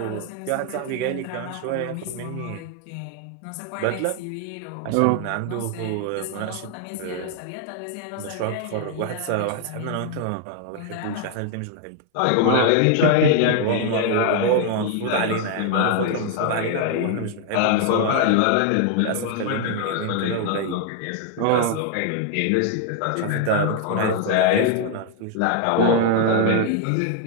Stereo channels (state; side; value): different; both; correlation 0.00